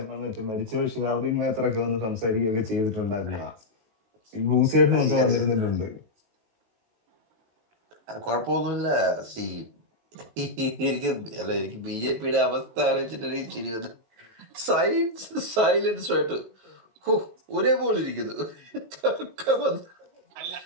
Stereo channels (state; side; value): late; left; 19 ms